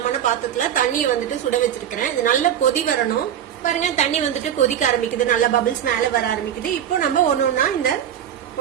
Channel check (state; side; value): quieter; left; 9.8 dB